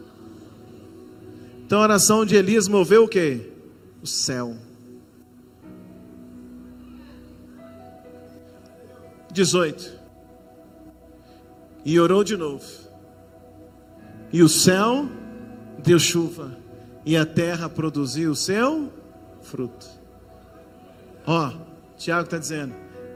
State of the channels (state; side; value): identical; both; correlation 1.00